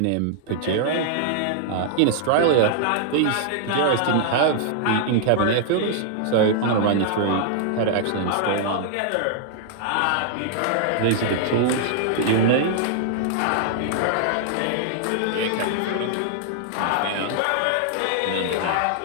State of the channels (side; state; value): both; different; correlation -0.01